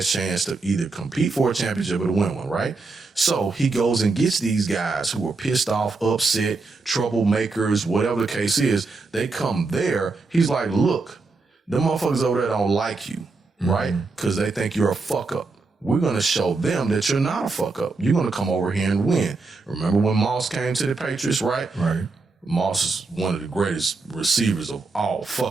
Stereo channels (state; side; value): quieter; left; 3.9 dB